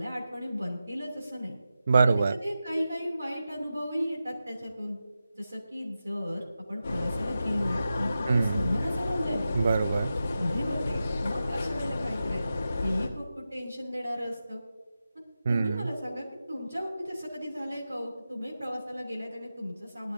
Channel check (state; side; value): inverted; both; correlation -0.92